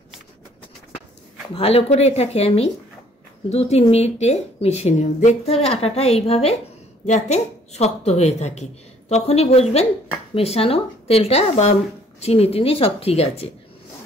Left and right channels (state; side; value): normal; both; correlation 0.60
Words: ভালো করে এটাকে আমি 2-3 মিনিটে মিশিয়ে নেব। দেখতে হবে আটাটা এইভাবে যাতে শক্ত হয়ে থাকে, তখনই বুঝবেন মেশানো তেলটা বা চিনি টিনি সব ঠিক আছে।